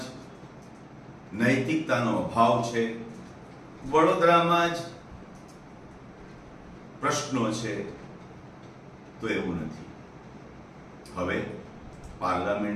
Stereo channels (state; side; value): identical; both; correlation 1.00